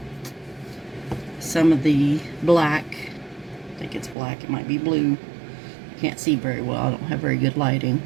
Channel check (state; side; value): drops out; left; at 4.2 s